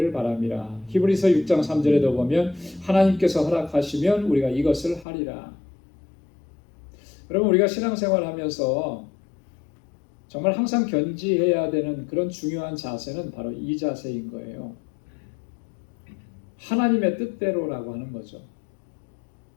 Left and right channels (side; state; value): right; drops out; at 5.1 s